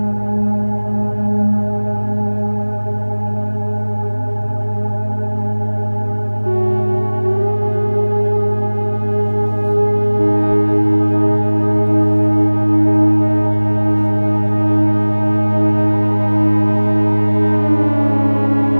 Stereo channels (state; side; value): inverted; both; correlation -1.00